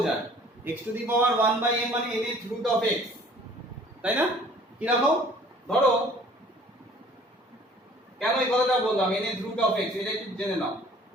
x to the power 1/n মানে nth রুট অফ x, তাই না? কি রাখো? ধরো, কেন এই কথাটা বললাম nth রুট অফ x, এটা একটু জেনে নাও।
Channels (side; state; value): both; normal; correlation 0.52